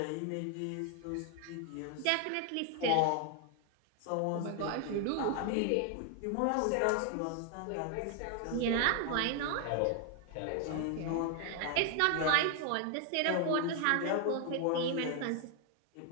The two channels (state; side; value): different; both; correlation 0.00